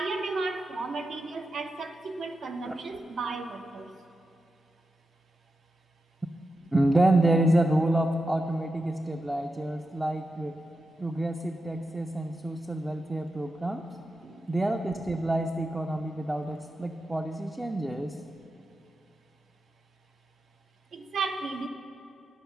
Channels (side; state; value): both; normal; correlation 0.89